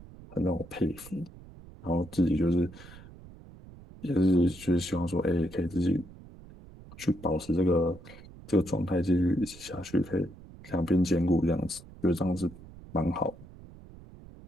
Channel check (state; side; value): noise; right; rumble, 19 dB below the sound